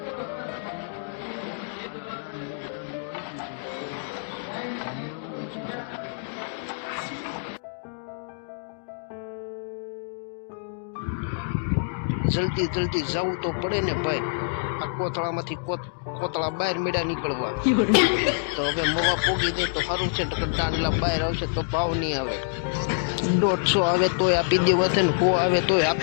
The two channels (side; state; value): right; silent; digital silence